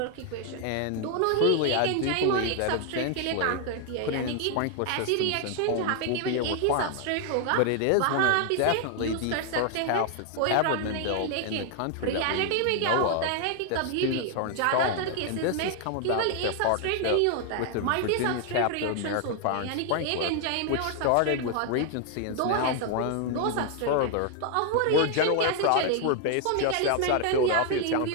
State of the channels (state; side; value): different; both; correlation 0.00